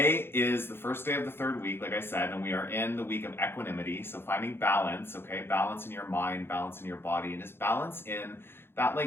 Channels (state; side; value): late; right; 0.11 ms